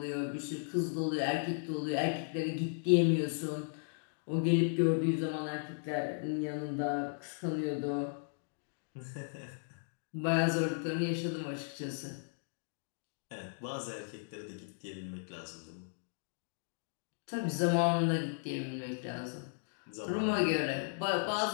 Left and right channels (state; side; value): silent; right; digital silence